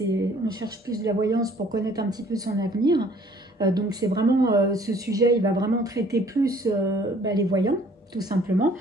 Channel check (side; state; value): both; normal; correlation 0.57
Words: on cherche plus de la voyance pour connaître un petit peu son avenir. Donc c'est vraiment ce sujet, il va vraiment traiter plus les voyants tout simplement.